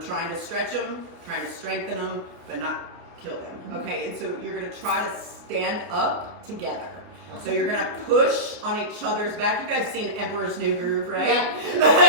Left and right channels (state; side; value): late; left; 29 ms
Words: trying to stretch them, trying to strengthen them, but not kill them. Okay, and so you're gonna try to stand up together. So you're gonna push on each other's back. You guys seen Emperor's New Groove, right? Yeah.